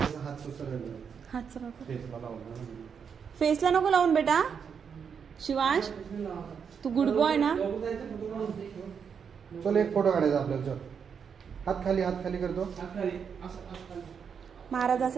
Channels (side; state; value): left; quieter; 6.8 dB